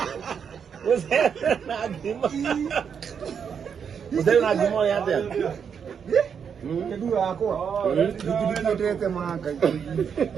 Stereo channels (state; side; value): quieter; left; 7.1 dB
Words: Na gima. Musoro na gima ya te. Kedua ako. Dite manga.